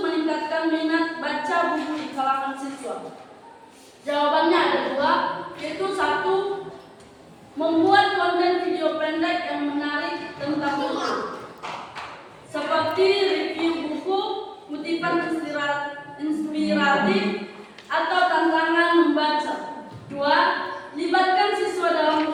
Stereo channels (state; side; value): identical; both; correlation 1.00